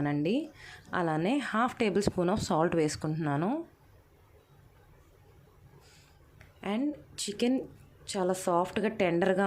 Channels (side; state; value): both; identical; correlation 1.00